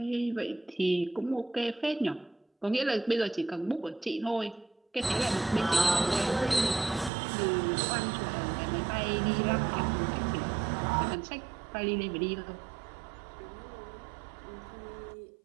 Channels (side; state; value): left; drops out; at 7.1 s